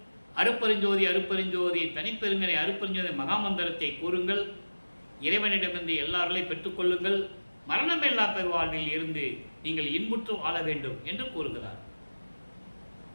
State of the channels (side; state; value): both; inverted; correlation -1.00